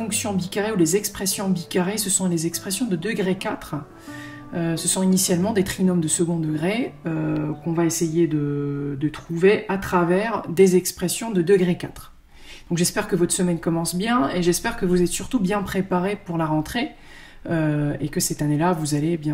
bicarrées ou les expressions bicarrées, ce sont les expressions de degré 4. Ce sont initialement des trinômes de second degré qu'on va essayer de trouver à travers des expressions de degré 4. Donc j'espère que votre semaine commence bien et j'espère que vous êtes surtout bien préparés pour la rentrée et que cette année-là vous allez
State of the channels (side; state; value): both; identical; correlation 1.00